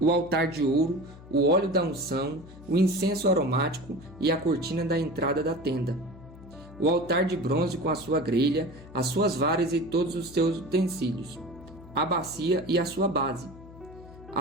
altar de ouro, o óleo da unção, o incenso aromático e a cortina da entrada da tenda, o altar de bronze com a sua grelha, as suas varas e todos os seus utensílios, a bacia e a sua base,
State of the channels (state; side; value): noise; left; hum, 18 dB below the sound